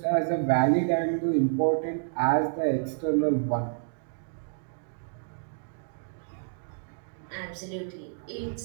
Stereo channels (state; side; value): silent; left; digital silence